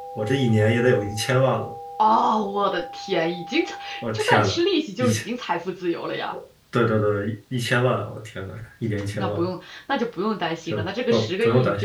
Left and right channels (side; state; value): both; identical; correlation 1.00